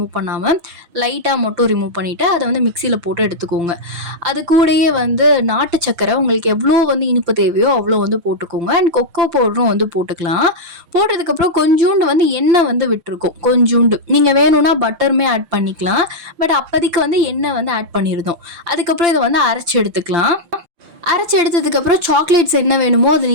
பண்ணாம லைட்டா மட்டும் ரிமூவ் பண்ணிட்டு, அத வந்து மிக்ஸியில போட்டு எடுத்துக்கோங்க. அது கூடயே வந்து நாட்டு சர்க்கரை உங்களுக்கு எவ்வளோ வந்து இனிப்பு தேவையோ அவ்வளோ வந்து போட்டுக்கோங்க. அண்ட் கொக்கோ பவுடரும் வந்து போட்டுக்கலாம். போட்டதுக்கப்புறம் கொஞ்சூண்டு வந்து எண்ணெய் வந்து விட்டுருக்கும். கொஞ்சூண்டு. நீங்க வேணும்னா பட்டருமே ஆட் பண்ணிக்கலாம். பட் அப்போதைக்கு வந்து எண்ணெய் வந்து ஆட் பண்ணியிருந்தோம். அதுக்கப்புறம் இத வந்து அரைச்சு எடுத்துக்கலாம். அரைச்சி எடுத்ததுக்கப்புறம் சாக்லேட்ஸ் என்ன வேணுமோ அது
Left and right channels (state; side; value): late; left; 5.8 ms